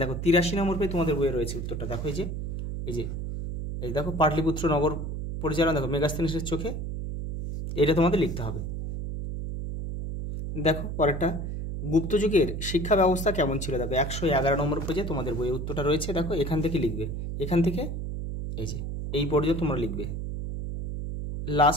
দেখো 83 নম্বর পেজে তোমাদের বইয়ে রয়েছে উত্তরটা। দেখো এই দেখো পাটলিপুত্র নগর পরিচালনা, দেখো মেগাস্থিনিসের চোখে, এটা তোমাদের লিখতে হবে। দেখো পরেরটা, গুপ্ত যুগের শিক্ষা ব্যবস্থা কেমন ছিল। দেখো 111 নম্বর পেজে তোমাদের বইয়ের উত্তরটা রয়েছে। দেখো এখান থেকে লিখবে, এখান থেকে এই পর্যন্ত তোমরা লিখবে।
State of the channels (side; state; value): right; noise; hum, 4 dB below the sound